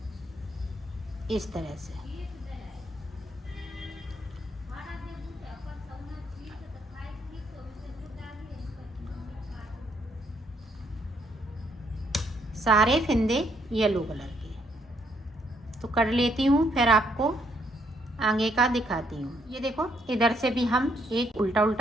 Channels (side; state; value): both; normal; correlation 0.72